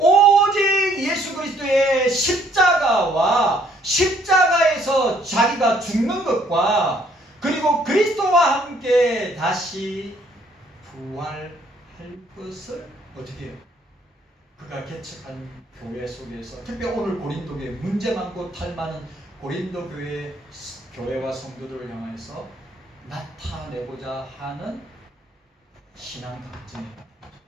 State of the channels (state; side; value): normal; both; correlation 0.64